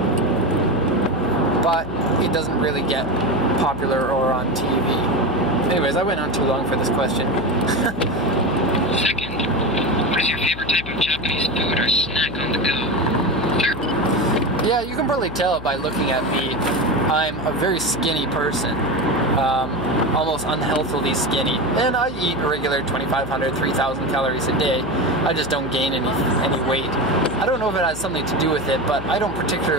but it doesn't really get popular or on TV. Anyways, I went on too long for this question. Second, what is your favorite type of Japanese food or snack on the go? Third. Yeah, you can probably tell by looking at me. I'm a very skinny person. Almost unhealthily skinny, and I eat a regular 2,500, 3,000 calories a day. I just don't gain any weight. I don't know if it has something to do with it, but I don't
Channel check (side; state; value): left; noise; hum, 12 dB below the sound